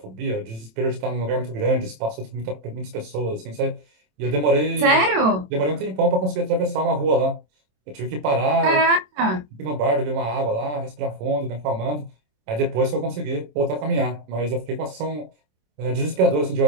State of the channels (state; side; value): late; left; 27 ms